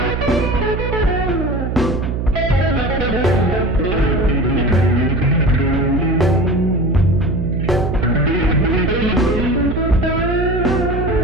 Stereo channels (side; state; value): right; noise; hum, 3 dB below the sound